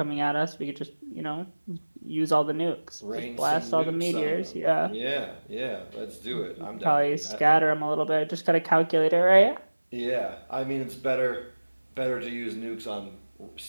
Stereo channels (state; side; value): inverted; both; correlation -1.00